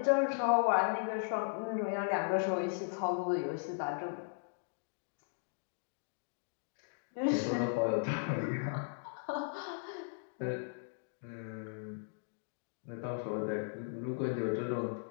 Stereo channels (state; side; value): silent; right; digital silence